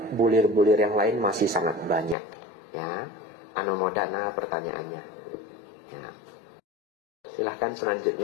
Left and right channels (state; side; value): drops out; right; at 2.1 s